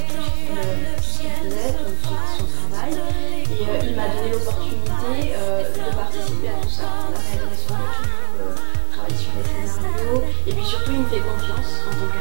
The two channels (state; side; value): quieter; left; 34.8 dB